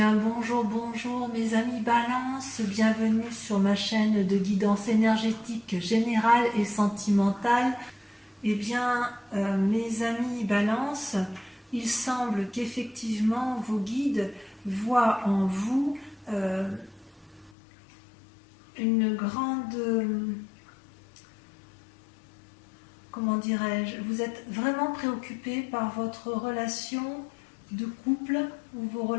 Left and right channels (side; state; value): right; drops out; at 17.6 s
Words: bonjour, bonjour mes amis Balance, bienvenue sur ma chaîne de guidance énergétique générale et sentimentale. Eh bien, mes amis Balance, il semble qu'effectivement vos guides voient en vous une grande... comment dirais-je, vous êtes vraiment préoccupé par votre relation de couple ou vos